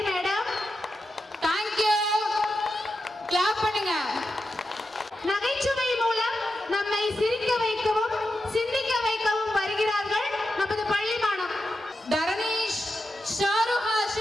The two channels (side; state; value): both; normal; correlation 0.89